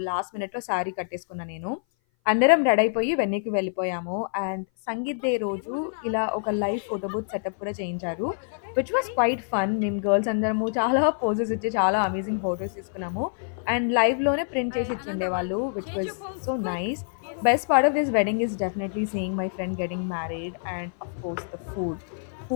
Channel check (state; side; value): silent; right; 57 dB below the other